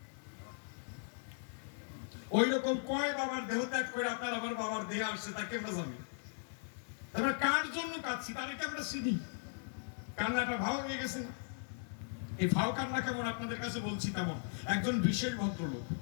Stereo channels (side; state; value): right; silent; digital silence